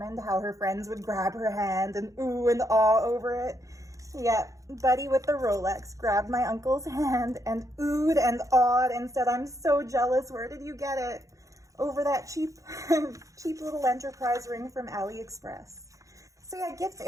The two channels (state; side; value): late; left; 0.16 ms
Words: how her friends would grab her hand and ooh and awe over it. Yeah, Buddy with the Rolex grabbed my uncle's hand and oohed and awed and said, I'm so jealous. Where did you get it? Over that cheap little enterprise ring from AliExpress. So yeah, gifts,